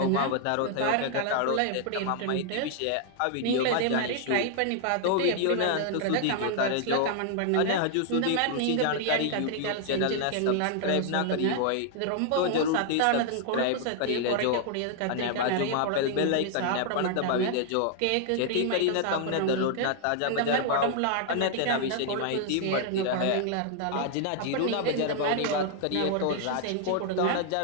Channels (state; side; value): different; both; correlation 0.00